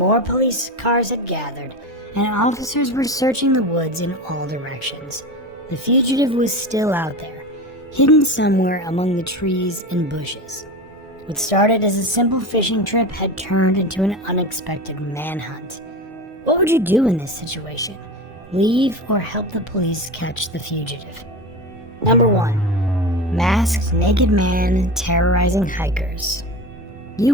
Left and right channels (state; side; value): normal; both; correlation 0.26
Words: police cars had gathered, and officers were searching the woods in all directions. The fugitive was still out there, hidden somewhere among the trees and bushes. What started as a simple fishing trip had turned into an unexpected manhunt. What would you do in this situation? Leave or help the police catch the fugitive? Number 1. Masked naked man terrorizing hikers.